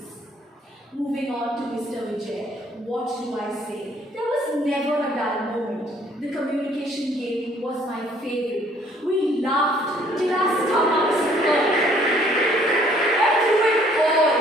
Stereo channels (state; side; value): normal; both; correlation 0.61